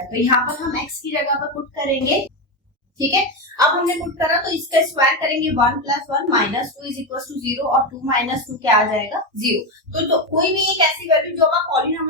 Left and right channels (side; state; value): both; normal; correlation 0.12